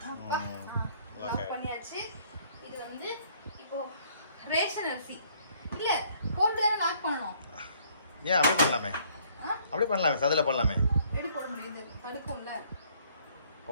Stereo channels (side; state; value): both; inverted; correlation -0.62